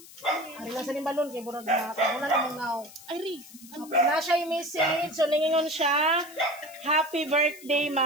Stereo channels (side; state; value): left; noise; hiss, 19 dB below the sound